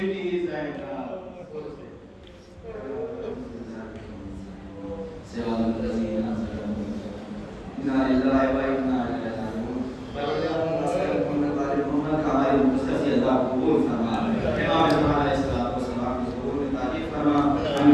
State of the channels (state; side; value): identical; both; correlation 1.00